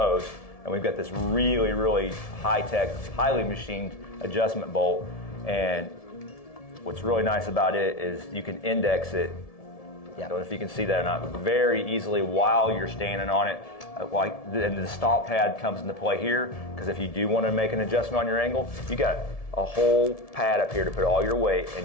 and we've got this really, really high-tech, highly machined adjustment bolt. And what's really nice about it is you can index it. I don't know if you can see that or not, very easily while you're standing on it. And the stomp pad comes into play here, because if you do want to make an adjustment on your angle, you got a whole pad up here to put all your weight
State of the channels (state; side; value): late; right; 1.7 ms